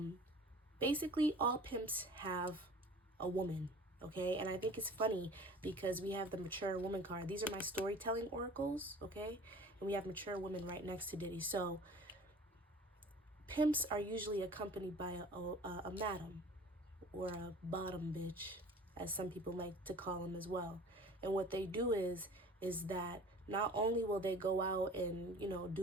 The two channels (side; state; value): both; normal; correlation 0.44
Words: Basically, all pimps have a woman, okay? And I think it's funny because we have the mature woman card. These are my storytelling oracles, okay? And we have mature women right next to Diddy. So pimps are usually accompanied by a madam, or a bottom bitch, as some people like to call them as well. And what they do is that not only will they go out and,